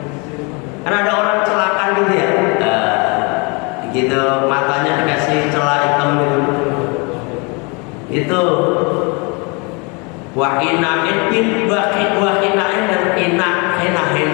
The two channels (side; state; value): right; quieter; 30.6 dB